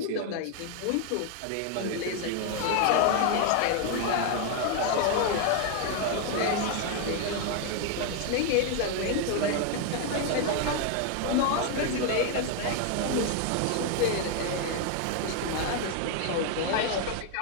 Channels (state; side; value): different; both; correlation 0.00